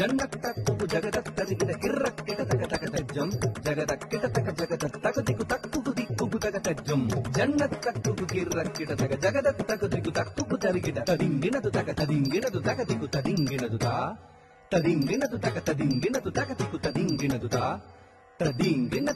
ஜகதத்தரிகிட கிரக்கிட தகதகதஜம் ஜகதக்கிட தக ஜகதக் தகதிகு தக்கு திக்கு தகதஜம் ஜன்னத்தக்கு கிரக்கிட தக ஜகதக் தகதிகு தக்கு தரிகிட ததிங்கினது தக ததிங்கினது தகதிகு ததிங்கினது தா ததிங்கினது தக ததிங்கினது தகதிகு ததிங்கினது தா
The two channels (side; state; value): both; identical; correlation 1.00